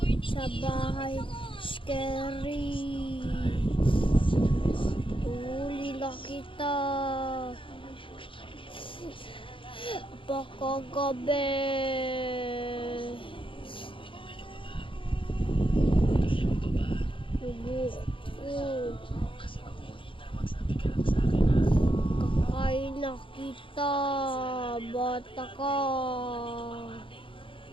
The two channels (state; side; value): late; right; 0.25 ms